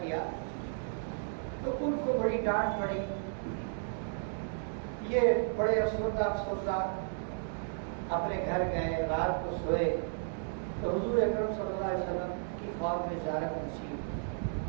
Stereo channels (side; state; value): left; silent; digital silence